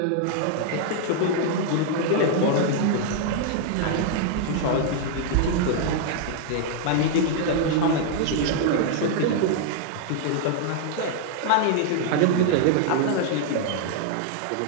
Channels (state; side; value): different; both; correlation 0.00